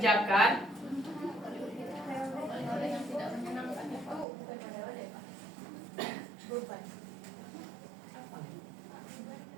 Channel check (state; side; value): drops out; left; at 4.2 s